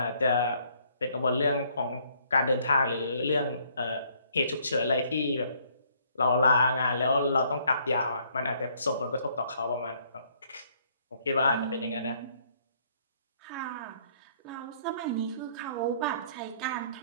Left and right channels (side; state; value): both; inverted; correlation -0.65